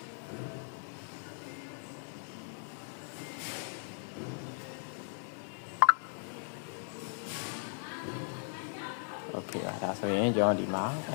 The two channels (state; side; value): silent; right; digital silence